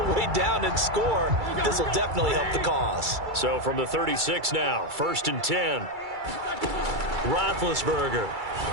way down and score. This will definitely help the cause. So from the 36 now, 1st and 10. Roethlisberger.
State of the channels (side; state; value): left; late; 2.3 ms